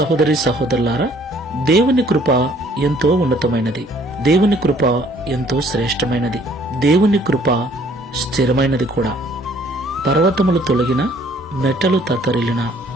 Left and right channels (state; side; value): normal; both; correlation 0.59